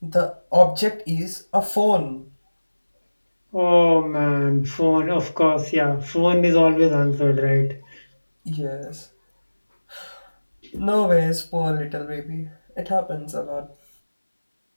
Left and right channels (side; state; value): both; inverted; correlation -1.00